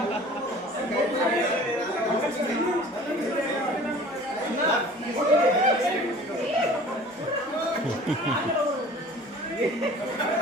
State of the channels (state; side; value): normal; both; correlation 0.46